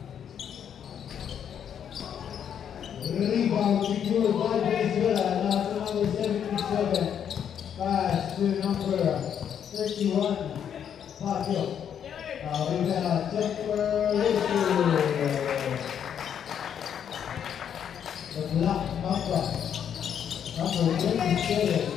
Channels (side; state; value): right; quieter; 8.7 dB